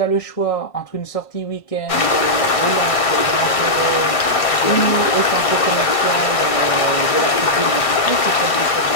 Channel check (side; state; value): right; late; 1.6 ms